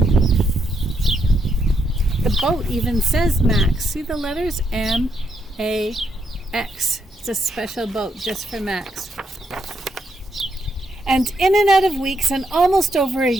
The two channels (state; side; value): normal; both; correlation 0.78